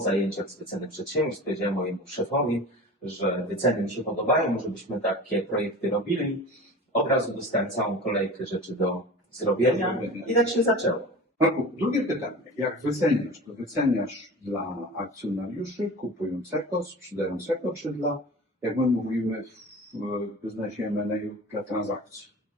z wyceny przedsiębiorstw, powiedziałem mojemu szefowi, że wyceny mi się podobają, żebyśmy takie projekty robili. Od razu dostałem całą kolejkę rzeczy do zrobienia i tak się zaczęło. Marku, drugie pytanie. Jak wyceniasz? To wyceniasz dla akcjonariuszy, kupującego, sprzedającego, czy dla, jak my mówimy w biznesie M&A, dla transakcji?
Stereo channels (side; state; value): both; normal; correlation 0.36